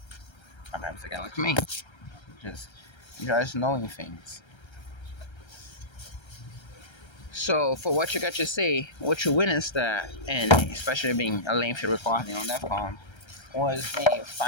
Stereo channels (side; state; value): right; late; 1.3 ms